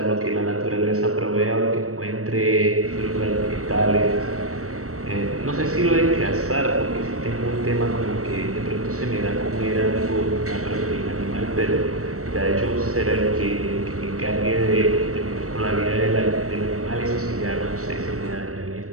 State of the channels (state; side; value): late; left; 0.65 ms